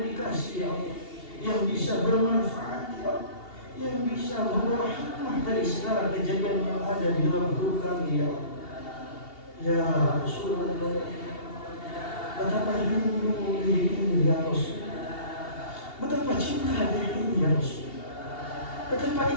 ya Allah, yang bisa bermanfaat, ya Allah, yang bisa membawa hikmah dari segala kejadian yang ada di dalam hidup kami, ya Allah. Ya Rasulullah, betapa rindu diri ini, ya Rasul. Betapa cinta diri ini, ya Rasul. Betapa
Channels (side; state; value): right; late; 2.8 ms